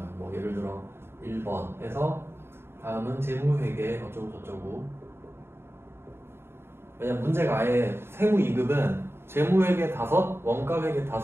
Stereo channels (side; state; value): left; late; 0.11 ms